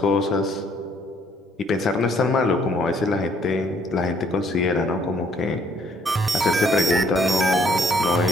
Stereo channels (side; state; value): both; normal; correlation 0.65